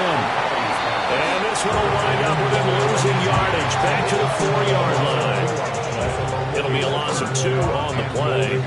And this one will wind up with him losing yardage back to the 4-yard line. It'll be a loss of 2 on the play.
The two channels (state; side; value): identical; both; correlation 1.00